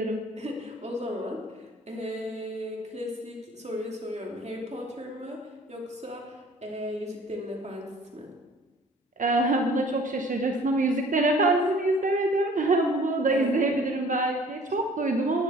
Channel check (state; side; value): normal; both; correlation 0.51